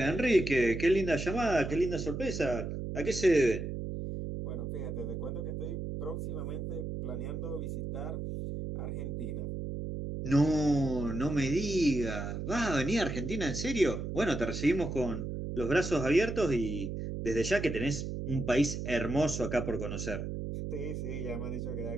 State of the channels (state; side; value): noise; right; hum, 5 dB below the sound